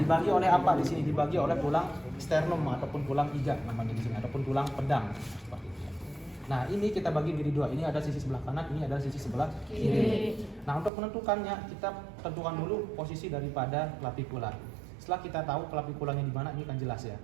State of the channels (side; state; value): left; drops out; at 10.9 s